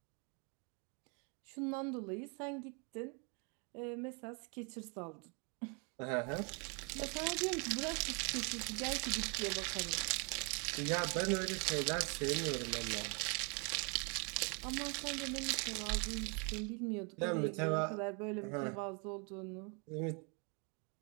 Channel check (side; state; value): left; quieter; 35.3 dB